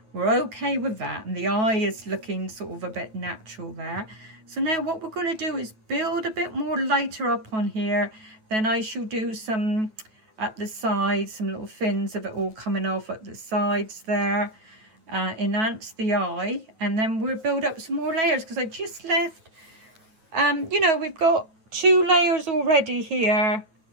we're okay with that. And the eye is looking sort of a bit natural there. So now what we're going to do is build a bit more lighter up on here. Then I shall do some at the sides, some little fins of it all coming off at the sides there, enhance the eye, and then we'll build up some more layers, because I just left you know, we've got 2 layers already here,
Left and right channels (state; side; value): late; left; 9.2 ms